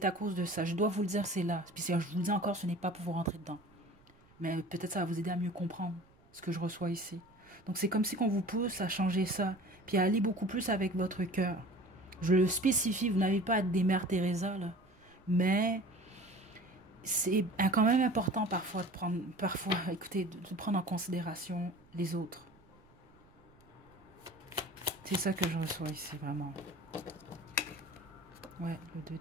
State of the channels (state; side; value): noise; right; rumble, 28 dB below the sound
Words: à cause de ça. Je dois vous le dire, c'est là. Puis si je vous le dis encore, ce n'est pas pour vous rentrer dedans. Mais peut-être ça va vous aider à mieux comprendre ce que je reçois ici. Donc c'est comme si qu'on vous pousse à changer ça, puis à aller beaucoup plus avec votre cœur. Je le spécifie, vous n'avez pas à être des mères Teresa, là. Mais c'est quand même important parfois de prendre en considération les autres. C'est ça que je reçois ici, vraiment. Ouais, le 2